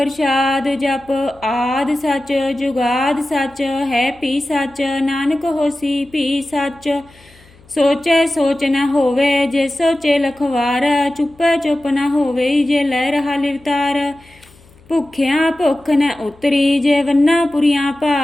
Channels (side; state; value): left; noise; hum, 27 dB below the sound